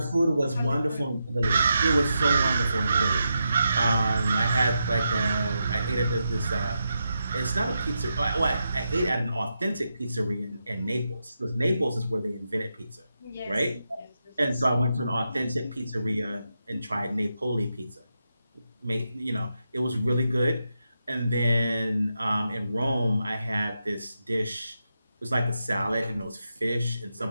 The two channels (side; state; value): both; inverted; correlation -0.86